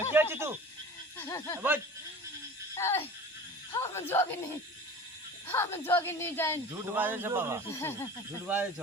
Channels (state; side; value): normal; both; correlation 0.38